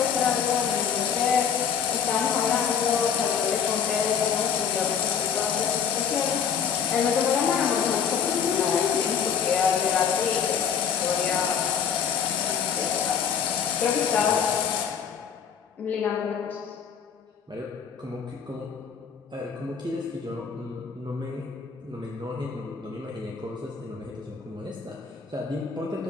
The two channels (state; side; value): quieter; right; 7.3 dB